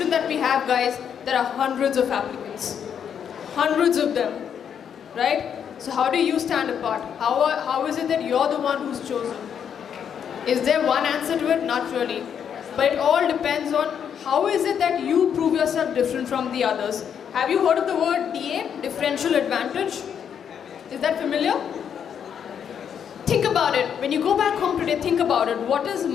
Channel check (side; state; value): right; quieter; 8.1 dB